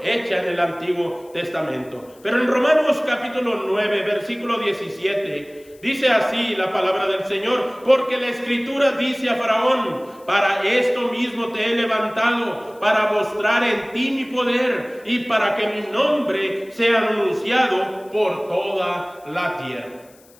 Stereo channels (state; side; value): noise; left; hiss, 28 dB below the sound